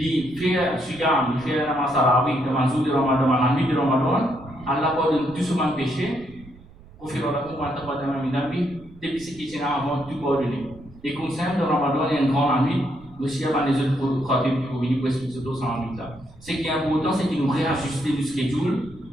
fait siyam, lui fait la masarawi dans un jour de Ramadan, dans la nuit de Ramadan, Allah pardonne tout son péché. Ghufira lahu ma taqaddama min dhanbi. Depuis ce qui est avant tout pardonné. Et comme ça, dans Ramadan, il y a une grande nuit. Aussi, avant les autres produits pour venir pour expliquer ce dans la nuit là. Ce qui est important, c'est que nous réajustons le schedule,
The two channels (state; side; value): noise; right; rumble, 22 dB below the sound